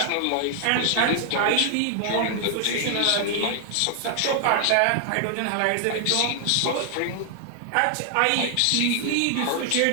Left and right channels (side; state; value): both; different; correlation 0.00